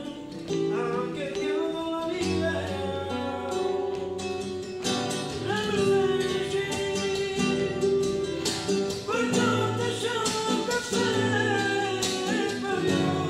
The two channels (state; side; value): identical; both; correlation 1.00